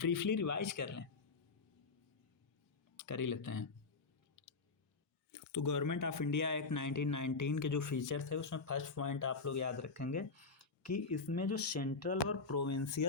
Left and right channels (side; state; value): right; quieter; 4.2 dB